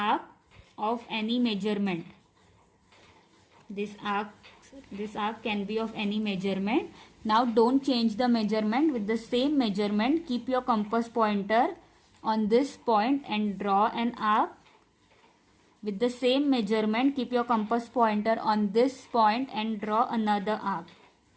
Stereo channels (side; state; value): both; identical; correlation 1.00